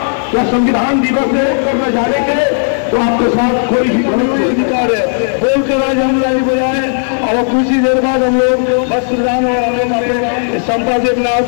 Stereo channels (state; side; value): silent; right; digital silence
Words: क्या संविधान दिवस है करने जाने के तो आपके साथ कोई भी अधिकार है बोलकर आज हम लाइन बजाए और कुछ ही देर बाद हम लोग बस प्रधान और हम लोग संपादक नाथ